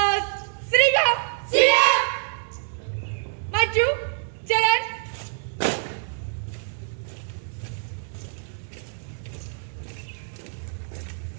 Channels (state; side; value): silent; left; digital silence